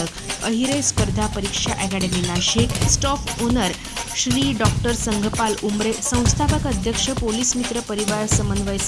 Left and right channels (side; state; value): both; identical; correlation 1.00